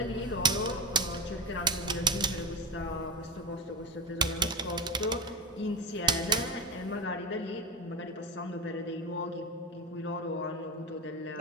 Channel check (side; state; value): both; normal; correlation 0.21